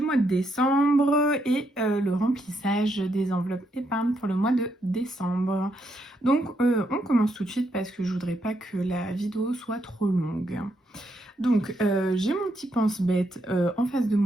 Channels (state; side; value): normal; both; correlation 0.78